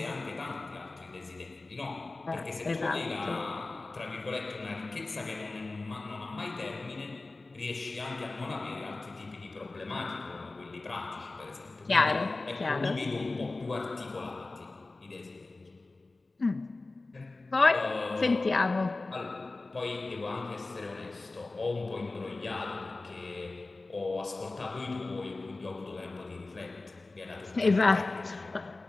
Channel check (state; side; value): quieter; right; 3.3 dB